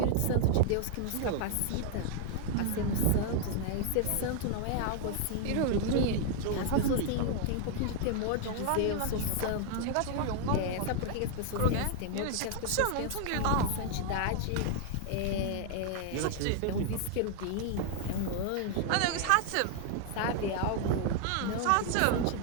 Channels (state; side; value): different; both; correlation 0.00